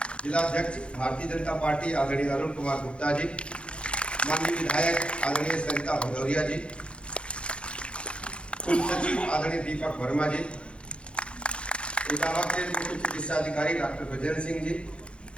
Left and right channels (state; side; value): late; right; 0.058 ms